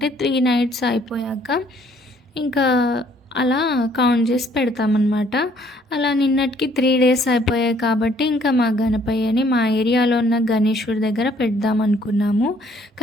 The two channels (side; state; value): both; normal; correlation 0.62